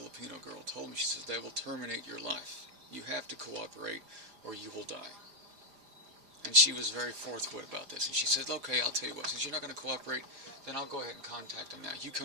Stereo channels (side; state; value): left; late; 5.0 ms